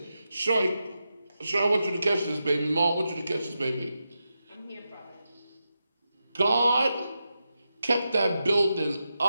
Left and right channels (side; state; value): both; inverted; correlation -0.89